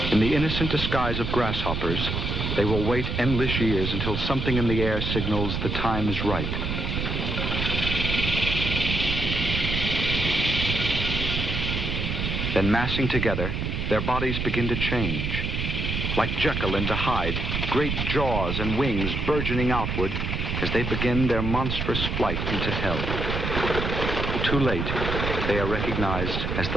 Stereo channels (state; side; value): noise; right; rumble, 2 dB below the sound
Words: In the innocent disguise of grasshoppers, they will wait endless years until something in the air signals the time is right. Then massing together, their bodies begin to change. Like Jekyll into Hyde, great jaws and wings burgeoning outward as they begin their monstrous flight into hell. Too late, they are recognized as